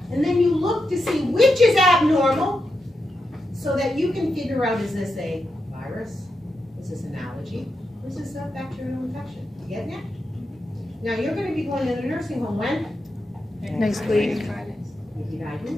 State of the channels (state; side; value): normal; both; correlation 0.86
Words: And then you look to see which is abnormal so that you can figure out, is this a virus? Is this an allergy? Or is this a bacterial infection? You getting it? Now you're going to be going to the nursing home when? Next week.